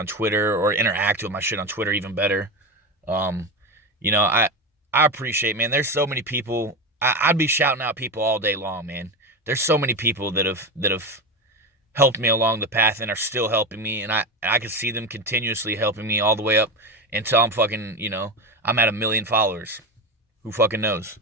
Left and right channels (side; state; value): both; normal; correlation 0.20